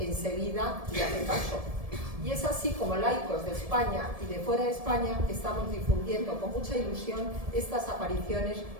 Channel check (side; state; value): left; late; 1.7 ms